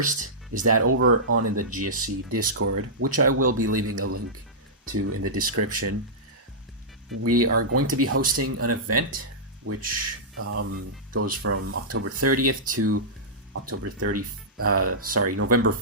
is that over on in the GSC Discord, which I will be leaving a link to in the description, we are going to be hosting an event which goes from October 30th to November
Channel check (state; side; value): normal; both; correlation -0.14